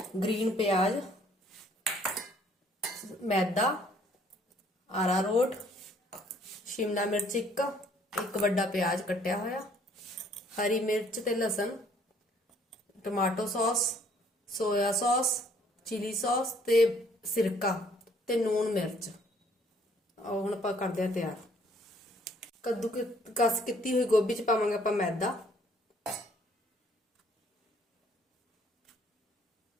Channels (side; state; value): both; normal; correlation 0.61